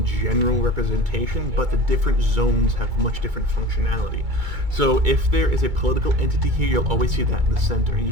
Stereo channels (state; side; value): late; left; 2.3 ms